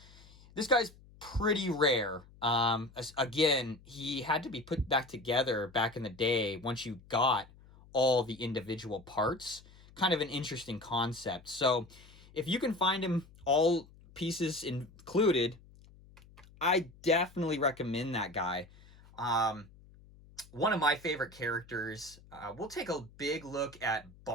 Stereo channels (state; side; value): noise; left; hum, 24 dB below the sound